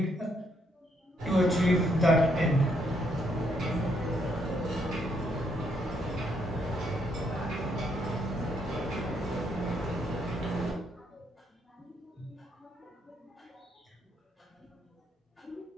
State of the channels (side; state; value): both; normal; correlation 0.73